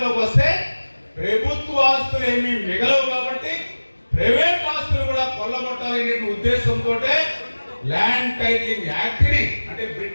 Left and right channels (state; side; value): inverted; both; correlation -1.00